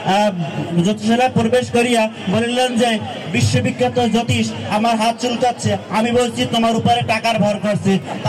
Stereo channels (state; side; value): identical; both; correlation 1.00